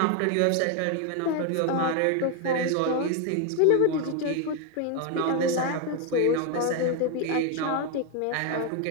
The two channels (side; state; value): both; different; correlation 0.01